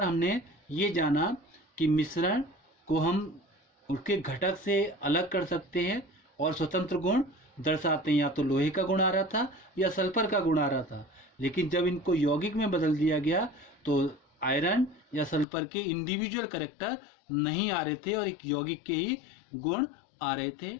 हमने ये जाना कि मिश्रण को हम उसके घटक से अलग कर सकते हैं और स्वतंत्र गुण दर्शाते हैं। या तो लोहे का गुण आ रहा था या सल्फर का गुण आ रहा था, लेकिन जब इनको यौगिक में बदल दिया गया तो आयरन या सल्फर के इंडिविजुअल कैरेक्टर नहीं आ रहे थे और एक यौगिक के ही गुण आ रहे थे।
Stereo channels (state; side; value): drops out; right; at 15.5 s